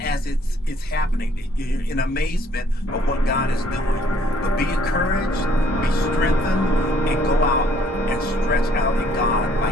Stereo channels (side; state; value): both; normal; correlation 0.62